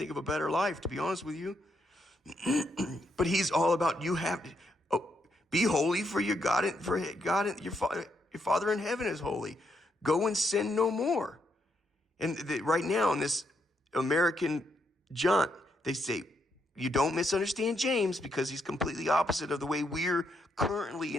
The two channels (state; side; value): normal; both; correlation 0.78